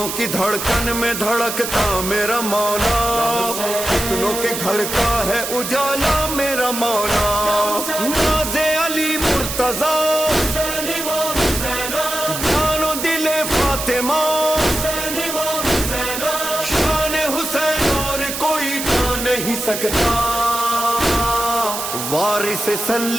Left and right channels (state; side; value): noise; right; hiss, 5 dB below the sound